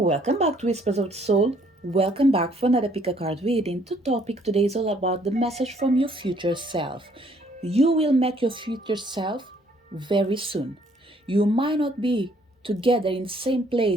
back to Whispers of the Soul. Welcome back for another pick a card reading. The topic today is all about the message from your future self. You will meet your future self very soon. You might not be together in the same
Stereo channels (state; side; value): normal; both; correlation 0.64